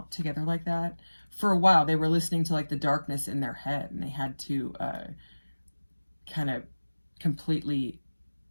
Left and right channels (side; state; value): both; inverted; correlation -1.00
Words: together like that. For a while, they were listening to like the darkness in their head, and they had to kind of completely